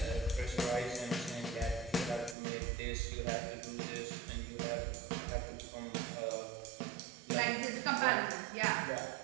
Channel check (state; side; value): drops out; left; at 2.4 s